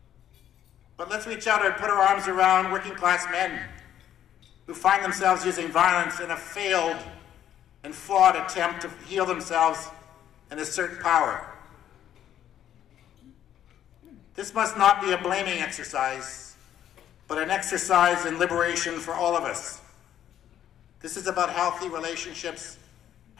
But let's reach out and put our arms around working-class men who find themselves using violence in a failed and flawed attempt to heal themselves and assert power. This must not be a blaming exercise, but an exercise in liberation for all of us. This is about healthy relationships,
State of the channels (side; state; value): right; quieter; 10.7 dB